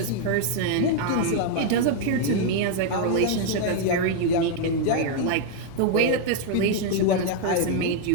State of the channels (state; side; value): different; both; correlation 0.00